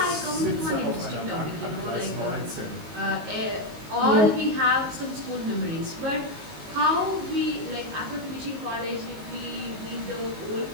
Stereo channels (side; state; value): left; late; 19 ms